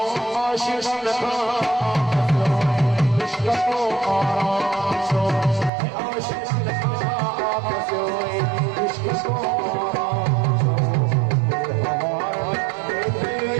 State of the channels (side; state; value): left; drops out; at 5.7 s